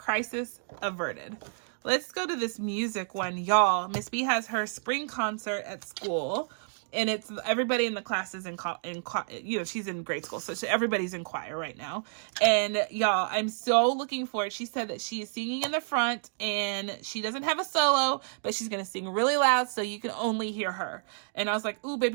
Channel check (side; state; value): left; silent; digital silence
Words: averted. Let's go to this music one, y'all. Miss B has her spring concert at school. And it's everybody in the class is she's in grade school. So everybody's in choir right now. And y'all, I'm so looking for it. She said that she is singing in the front and she doesn't have a solo, but she's going to sing really loud so you can only hear her. And I was like, ooh,